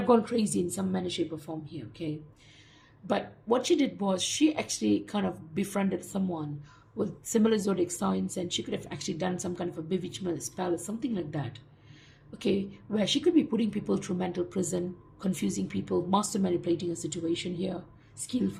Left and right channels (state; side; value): identical; both; correlation 1.00